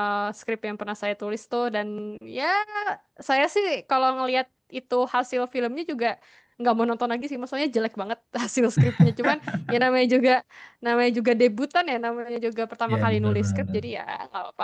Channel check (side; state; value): both; identical; correlation 1.00